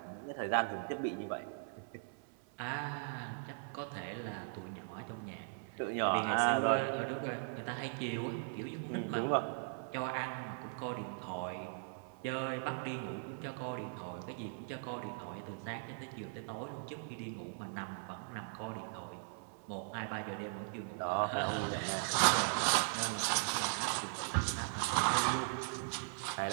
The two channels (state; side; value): silent; left; 52 dB below the other